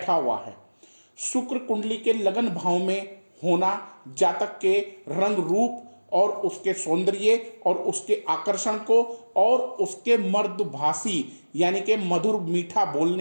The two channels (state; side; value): inverted; both; correlation -1.00